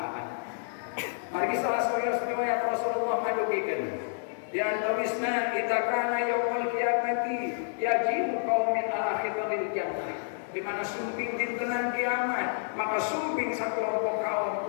Margi salah satu riwayat Rasulullah madugikeun di antawisna idza kana yaumul qiyamati yajibu qaumin ala khitaril jannah di mana sumping dintenan kiamat maka sumping sakelompok kaum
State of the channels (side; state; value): right; silent; 58 dB below the other